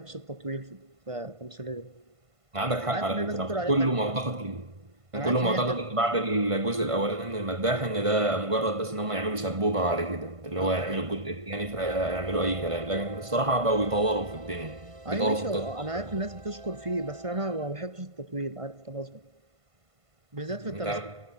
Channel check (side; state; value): left; late; 1.5 ms